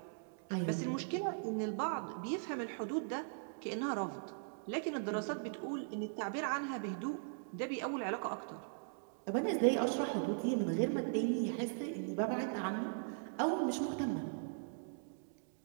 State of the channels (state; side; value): silent; left; digital silence